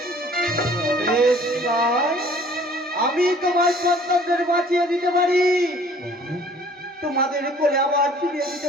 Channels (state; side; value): normal; both; correlation 0.53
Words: আমি তোমার সন্তানদের বাঁচিয়ে দিতে পারি, তোমাদের কোলে আবার ফিরিয়ে